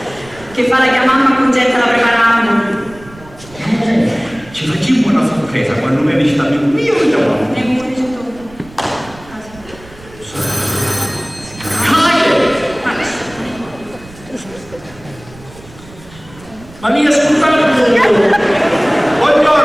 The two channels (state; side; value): noise; right; rumble, 21 dB below the sound